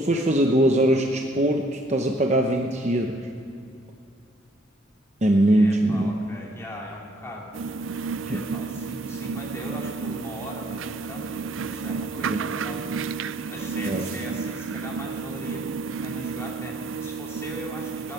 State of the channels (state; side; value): normal; both; correlation 0.63